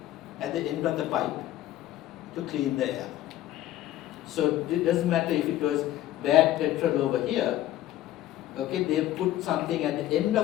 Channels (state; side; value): quieter; right; 13.6 dB